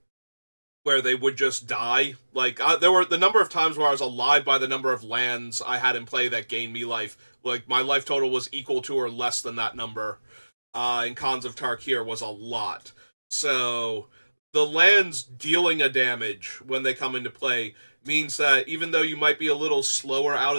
where they would just die. Like, there were the number of times where I was alive by the number of lands I had in play that gained me life. Like, my life total was equal to or less than that number. In Khans of Tarkir was a lot. So the lands dealing a damage when they come into play means that even though you might be a little slower out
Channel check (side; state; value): both; inverted; correlation -1.00